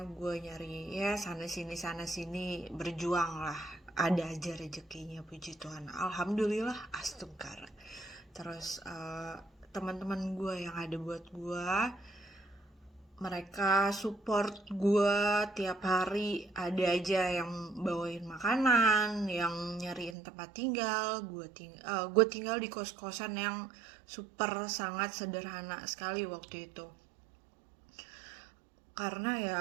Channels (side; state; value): left; drops out; at 20.2 s